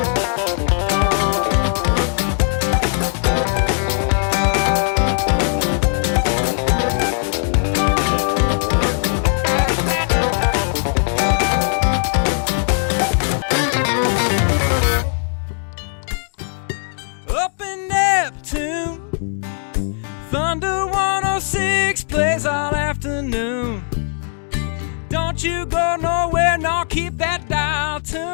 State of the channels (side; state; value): right; silent; 60 dB below the other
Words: in Neptune, Thunder 106 plays all afternoon. Don't you go nowhere, no, keep that dial